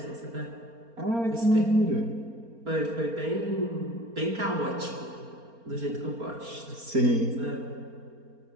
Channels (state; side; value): late; left; 4.3 ms